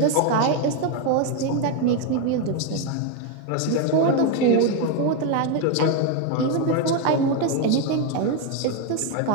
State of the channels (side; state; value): both; different; correlation 0.02